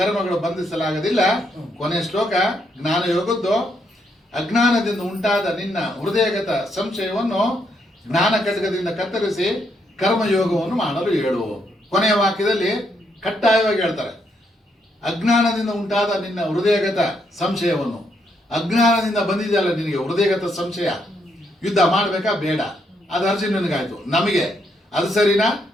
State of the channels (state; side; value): normal; both; correlation 0.76